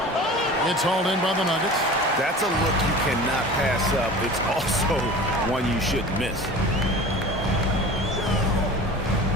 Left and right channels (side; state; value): both; normal; correlation 0.38